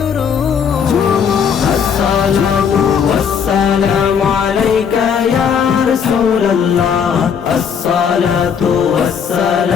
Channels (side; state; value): right; quieter; 7.1 dB